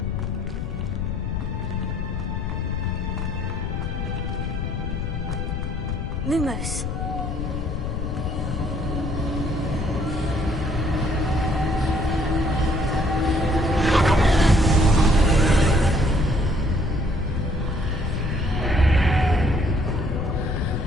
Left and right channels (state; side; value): noise; left; rumble, 3 dB below the sound